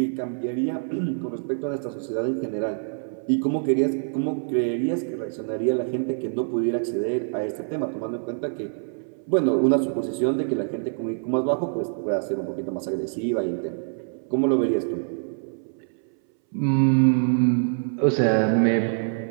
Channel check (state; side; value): silent; left; 62 dB below the other